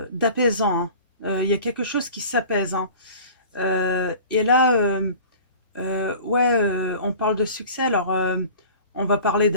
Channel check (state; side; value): inverted; both; correlation -0.42